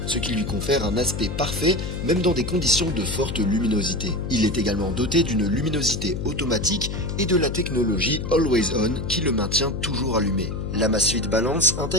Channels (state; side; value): noise; left; hum, 4 dB below the sound